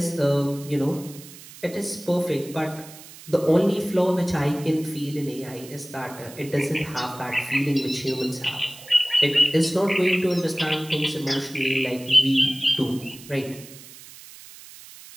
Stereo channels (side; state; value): right; noise; hiss, 18 dB below the sound